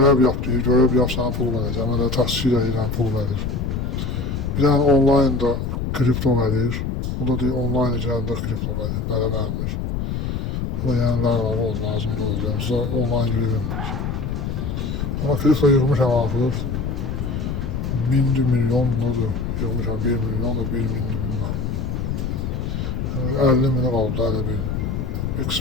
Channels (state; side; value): noise; left; rumble, 2 dB below the sound